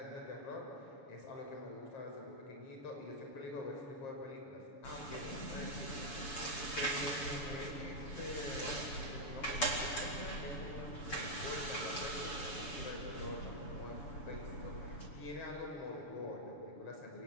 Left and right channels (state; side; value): late; right; 6.9 ms